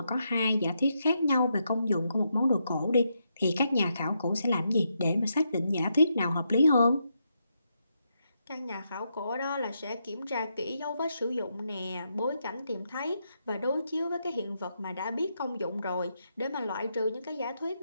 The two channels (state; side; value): inverted; both; correlation -0.81